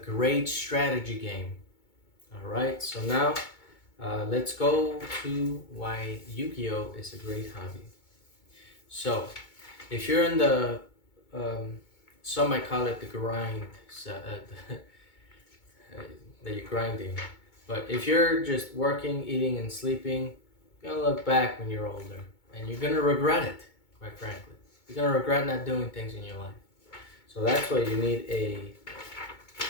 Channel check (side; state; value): right; late; 2.2 ms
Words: strategy game. All right, so now let's go to why Yu-Gi-Oh! Is a great hobby. So, if you're in the, some might call it the grind, that you're grinding. But if you're just working, eating, and sleeping, you're gonna look back when you're older, and you're gonna regret it. Quite frankly, you're gonna regret not doing things in your life. So that's why you need